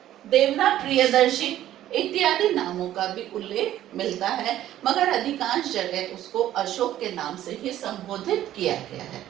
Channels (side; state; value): left; quieter; 12.8 dB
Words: प्रियदर्शी इत्यादि नामों का भी उल्लेख मिलता है, मगर अधिकांश जगह उसको अशोक के नाम से ही संबोधित किया गया है।